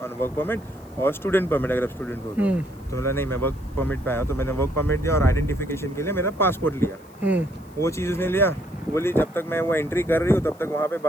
on work permit और स्टूडेंट परमिट अगर आप स्टूडेंट हो तो बोला नहीं मैं वर्क परमिट पे आया, तो मैंने वर्क परमिट दिया और आइडेंटिफिकेशन के लिए मेरा पासपोर्ट लिया। वो चीज़ उसने लिया, बोली जब तक मैं वो एंट्री कर रही हूँ तब तक वहाँ पे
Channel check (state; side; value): noise; left; hiss, 29 dB below the sound